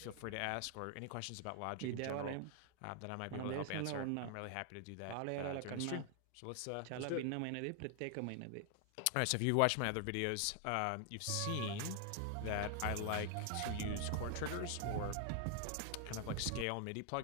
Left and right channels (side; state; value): both; different; correlation 0.00